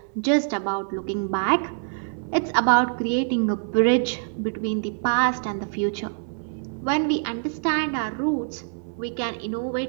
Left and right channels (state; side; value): silent; left; 62 dB below the other